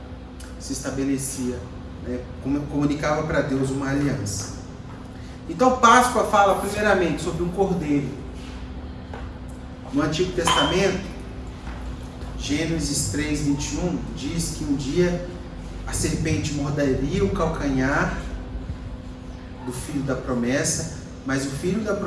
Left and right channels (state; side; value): identical; both; correlation 1.00